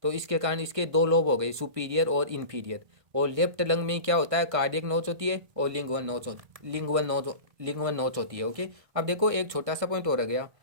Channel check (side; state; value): left; late; 1.5 ms